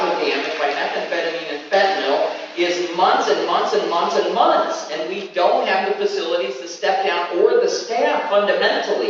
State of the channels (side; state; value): both; identical; correlation 1.00